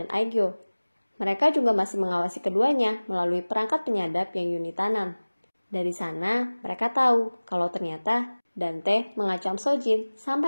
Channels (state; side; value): inverted; both; correlation -1.00